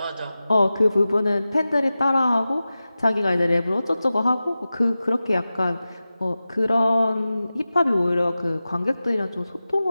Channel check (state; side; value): inverted; both; correlation -0.95